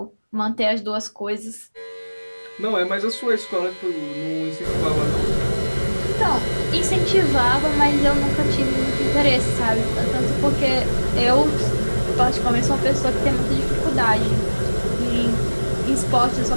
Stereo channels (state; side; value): inverted; both; correlation -1.00